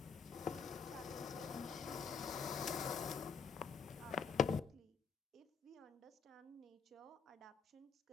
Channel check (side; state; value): right; quieter; 5.8 dB